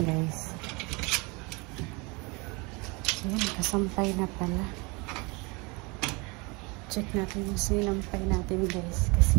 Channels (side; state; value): left; quieter; 27.9 dB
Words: guys. Ayan, kasampay na pala. Check natin yung sinampay natin guys.